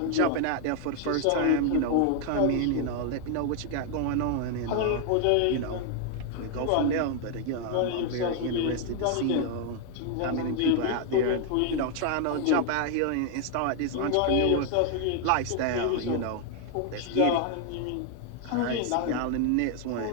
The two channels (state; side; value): different; both; correlation 0.00